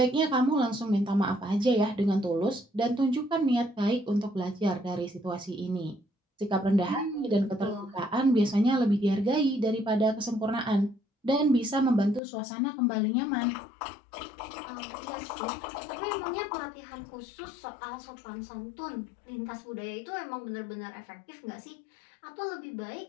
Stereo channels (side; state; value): right; drops out; at 12.2 s